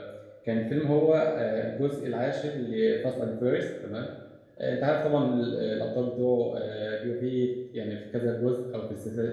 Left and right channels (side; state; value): both; identical; correlation 1.00